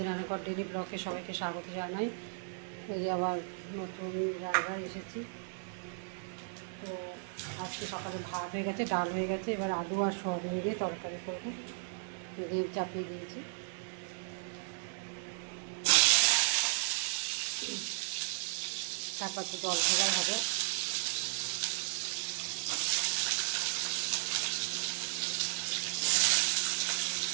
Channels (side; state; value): left; silent; 54 dB below the other